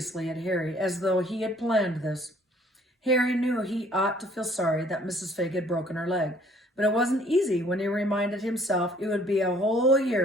at Harry as though he had planned this. Harry knew he ought to feel sorry that Mrs. Figg had broken her leg, but it wasn't easy when he reminded himself it would be a whole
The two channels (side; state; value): both; normal; correlation 0.59